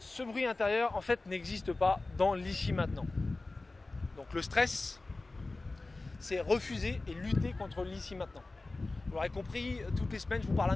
bruit intérieur, en fait, n'existe pas dans l'ici maintenant. Donc le stress, c'est refuser et lutter contre l'ici maintenant. Vous l'aurez compris, toutes les semaines, je vous parle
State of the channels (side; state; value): right; quieter; 3.2 dB